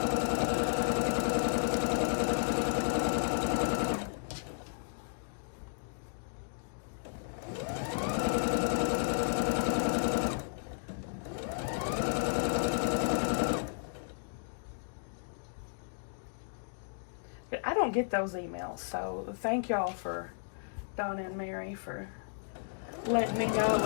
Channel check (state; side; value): silent; right; digital silence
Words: I don't get those emails, so thank y'all for Donna and Mary for letting me know it